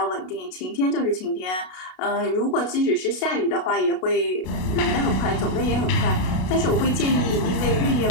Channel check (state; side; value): late; right; 33 ms